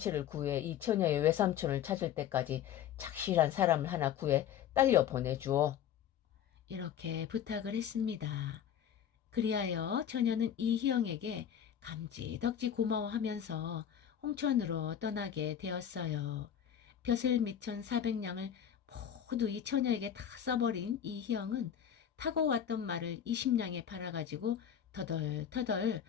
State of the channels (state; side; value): quieter; right; 9.5 dB